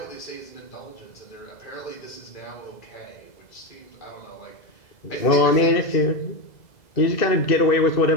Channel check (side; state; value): right; late; 2.0 ms